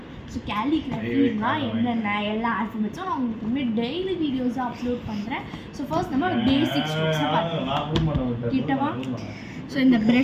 ஸோ கேலிகிராஃபினா என்னென்ன எல்லா ஆல்ஃபபெட்ஸும் நான் உங்களுக்கு டெய்லி வீடியோஸாக அப்லோட் பண்ணுறேன். ஸோ ஃபர்ஸ்ட் நம்ம பேசிக் ஸ்ட்ரோக்ஸை பார்க்கலாம். கிட்டவா? ஸோ இந்த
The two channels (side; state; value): both; identical; correlation 1.00